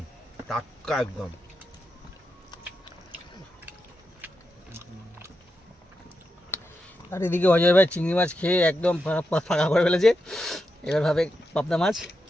টাটকা একদম। আর এদিকে অজয় ভাই চিংড়ি মাছ খেয়ে একদম ফাঁকা করে ফেলেছে। এবার ভাবে পাবদা মাছ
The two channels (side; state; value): both; normal; correlation 0.87